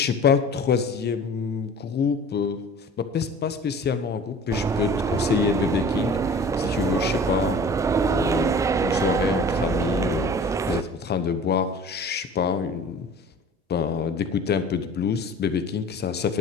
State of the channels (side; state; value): both; normal; correlation 0.43